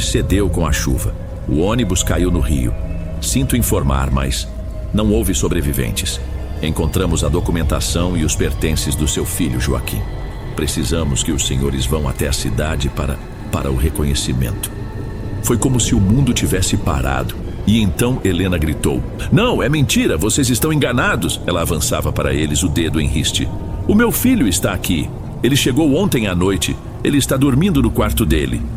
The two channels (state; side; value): identical; both; correlation 1.00